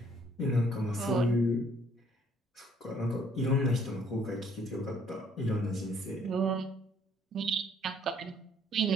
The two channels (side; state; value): both; normal; correlation 0.63